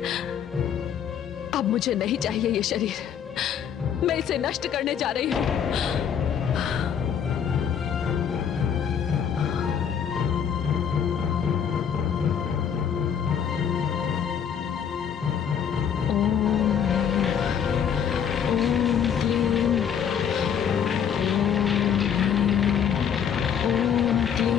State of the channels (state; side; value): quieter; right; 8.1 dB